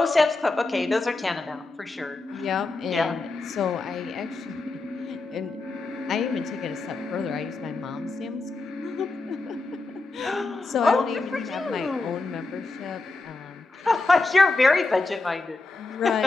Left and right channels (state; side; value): quieter; right; 3.4 dB